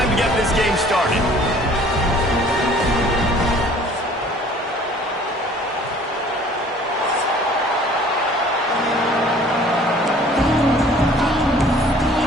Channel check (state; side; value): normal; both; correlation 0.52